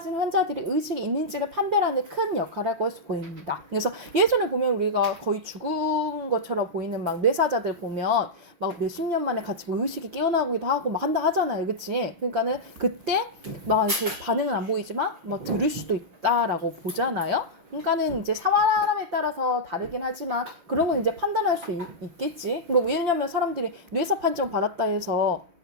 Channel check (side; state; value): left; late; 6.0 ms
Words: 환자들이 의식이 있는지를 판별하는 큰 역할을 하고 보입니다. 그래서 예전에 보면 우리가 거의 죽은 것처럼 보이는 막 뇌사자들 보면 막 몇십 년 만에 같이 뭐 의식이 깨어나기도 하고 막 한다 하잖아요, 그치? 그러니까는 그때 막 이렇게 반응은 안 보이지만 막 들을 수도 있다라고 보잖아요. 그러니까는 이제 사람에 따라서 다르긴 하지만 그런 건 이제 판단할 수 있겠지. 그러니까 왜냐면 사람들이 뇌사 판정 받았다 해서